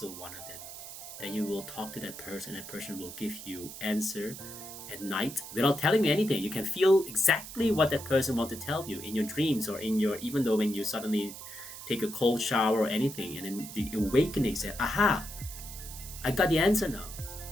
one of them. Then you will talk to that person will give you answer at night without telling me anything. You can feel exactly what that person wants to tell you in your dreams or in your, even though when you suddenly take a cold shower or anything, and then the awakening says, aha, I got the answer now.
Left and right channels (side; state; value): right; noise; hiss, 12 dB below the sound